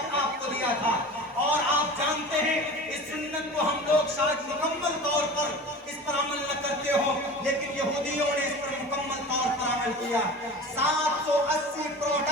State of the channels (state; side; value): normal; both; correlation 0.35